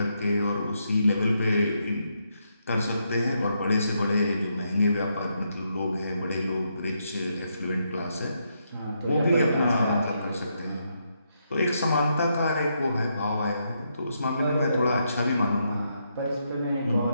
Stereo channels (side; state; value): both; inverted; correlation -0.79